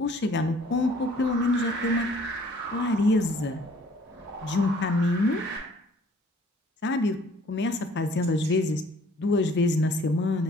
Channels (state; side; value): normal; both; correlation 0.56